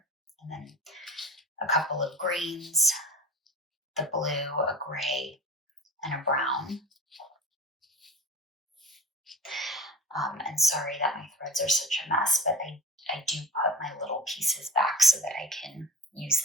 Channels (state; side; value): normal; both; correlation 0.36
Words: and then a couple of greens, the blue, a gray, and a brown. And sorry that my threads are such a mess, but I do put my little pieces back so that I can use